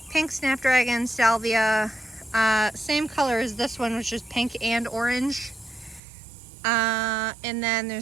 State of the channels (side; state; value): left; drops out; at 6.0 s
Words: pink snapdragon salvia, same color as this one, which is pink and orange. And then